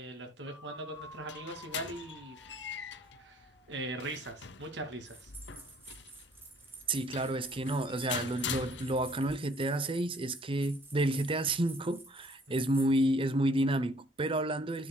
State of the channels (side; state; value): both; normal; correlation 0.59